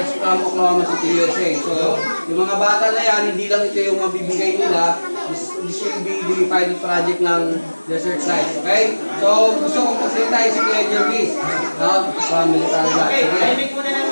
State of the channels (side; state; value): both; inverted; correlation -1.00